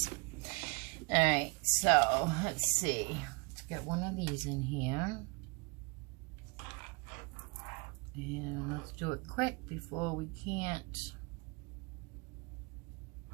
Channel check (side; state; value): left; quieter; 30.2 dB